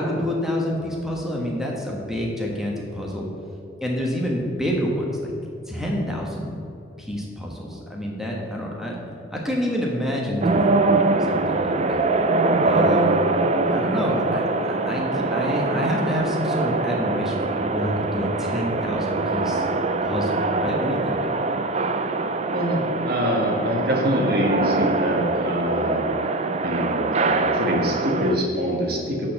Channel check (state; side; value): normal; both; correlation 0.26